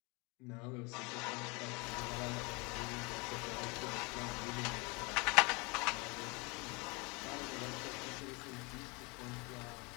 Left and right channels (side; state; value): right; quieter; 28.3 dB